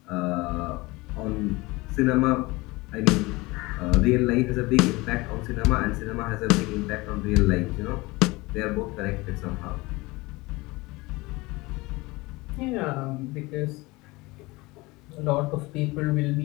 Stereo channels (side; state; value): right; quieter; 22.6 dB